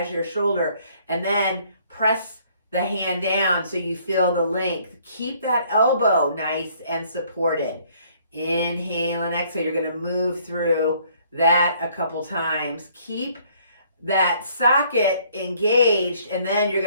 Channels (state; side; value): inverted; both; correlation -0.62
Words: your shoulder. And then press the hand down so you feel the length. Keep that elbow nice and supported. Inhale and exhale. You're going to move through that a couple times. Keep that socket engaged, and then you're